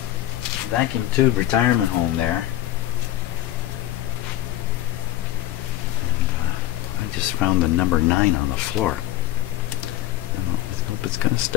vacuum tube retirement home there. And I just found the number 9 on the floor. I hope it's gonna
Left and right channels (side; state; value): right; quieter; 14.4 dB